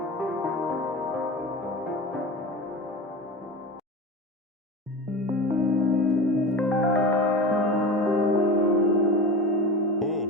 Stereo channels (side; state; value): both; normal; correlation 0.30